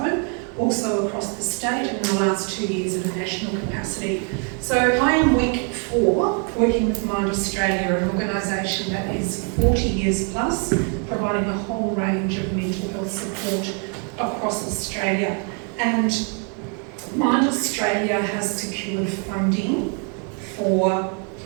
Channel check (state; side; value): quieter; left; 39.8 dB